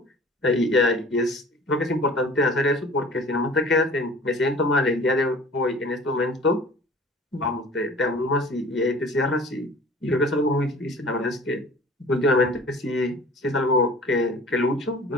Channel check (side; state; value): both; normal; correlation 0.45